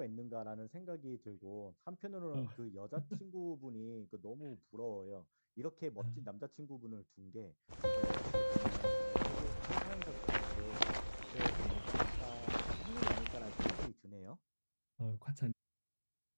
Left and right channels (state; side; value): inverted; both; correlation -1.00